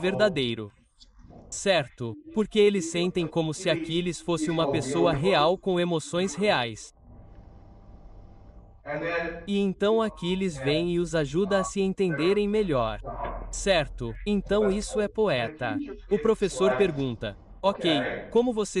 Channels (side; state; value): both; identical; correlation 1.00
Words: Certo, porque eles sentem como se Aquiles fosse uma pessoa real com emoções reais. E então Aquiles vem e os ajuda a se entenderem melhor. Certo, então isso é poeta. O professor pergunta: Ok, como